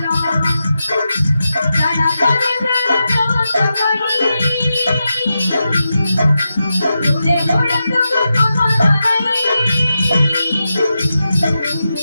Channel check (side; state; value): both; inverted; correlation -0.89